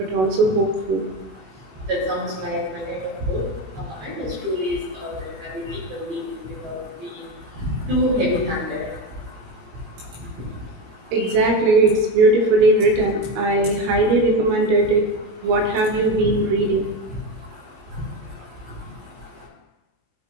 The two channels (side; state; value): left; late; 18 ms